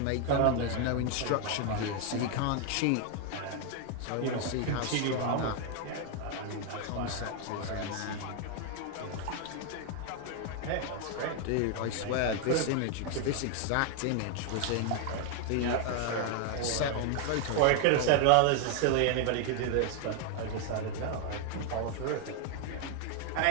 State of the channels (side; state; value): both; different; correlation 0.01